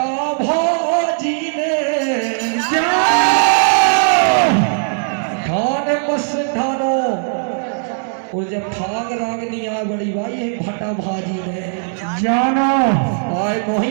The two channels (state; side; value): silent; left; 68 dB below the other